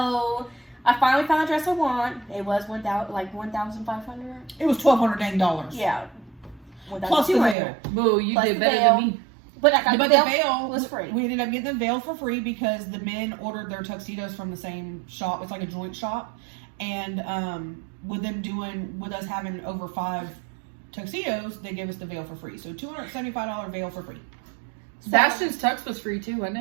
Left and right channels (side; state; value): left; drops out; at 7.6 s